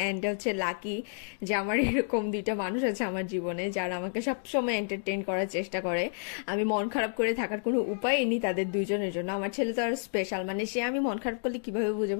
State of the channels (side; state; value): right; silent; digital silence